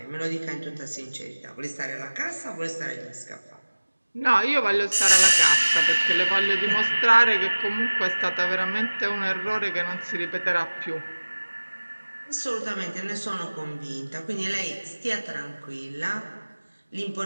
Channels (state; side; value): inverted; both; correlation -1.00